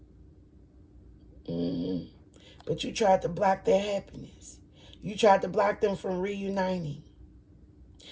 But you tried to block their happiness. You tried to block them from reuniting.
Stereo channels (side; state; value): both; identical; correlation 1.00